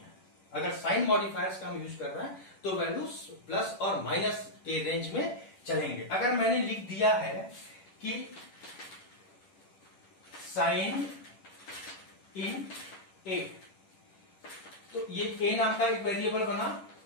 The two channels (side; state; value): right; late; 10 ms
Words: अगर साइन मॉडिफायर्स का हम यूज कर रहे हैं तो वैल्यूज प्लस और माइनस के रेंज में चलेंगे। अगर मैंने लिख दिया है कि साइन इन ए, तो ये ए नाम का एक वेरिएबल बना।